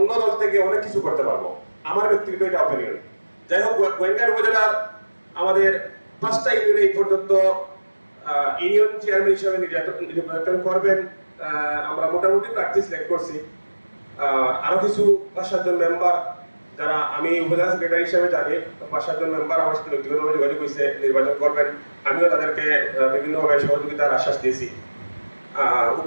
দল থেকে অনেক কিছু করতে পারবো, আমার ব্যক্তিগত এটা অপিনিয়ন। যাই হোক, গোয়েঙ্গার উপজেলার আমাদের 5টা ইউনিয়নে এই পর্যন্ত ইউনিয়ন চেয়ারম্যান হিসেবে নির্বাচন করবেন আমরা মোটামুটি প্রার্থী সিলেক্ট করছি। আরো কিছু 5-7 জন মেম্বার, যারা আমি উপজেলা সেক্রেটারি হিসেবে জানি, 5-7 জন মেম্বার আমার সাথে ব্যক্তিগতভাবে যোগাযোগ হয়েছে, নির্বাচন করবেন। আমিও তাদেরকে বিভিন্নভাবে সহযোগিতার আশ্বাস দিয়েছি।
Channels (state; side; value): inverted; both; correlation -1.00